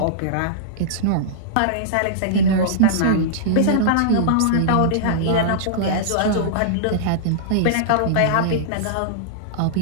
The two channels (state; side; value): different; both; correlation -0.03